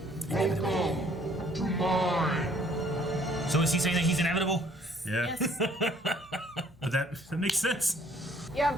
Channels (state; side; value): normal; both; correlation 0.61